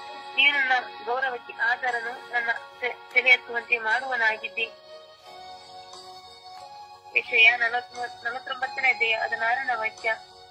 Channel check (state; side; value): identical; both; correlation 1.00